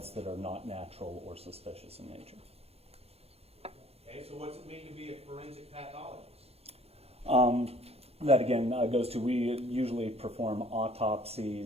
that are not natural or suspicious in nature. Okay, so what's it mean to be a forensic pathologist? That again goes to, we usually perform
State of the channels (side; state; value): left; late; 0.29 ms